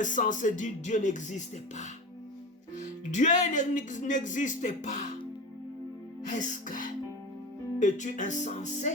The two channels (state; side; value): normal; both; correlation 0.30